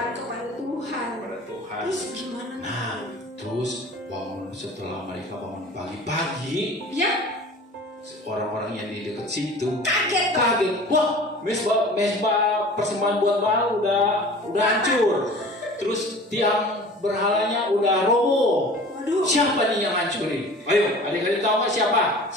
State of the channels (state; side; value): normal; both; correlation 0.42